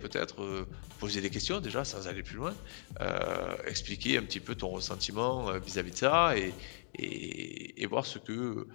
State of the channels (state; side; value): silent; right; digital silence